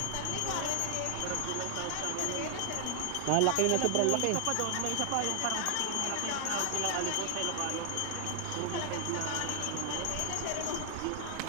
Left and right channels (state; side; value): different; both; correlation 0.00